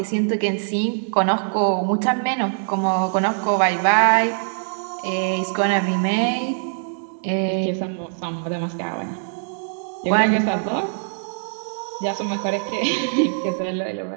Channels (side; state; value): left; silent; digital silence